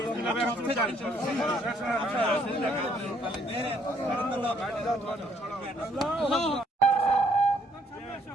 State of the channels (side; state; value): both; normal; correlation 0.66